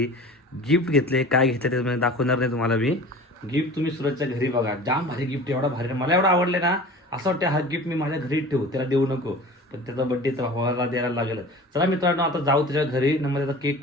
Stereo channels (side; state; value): both; normal; correlation 0.40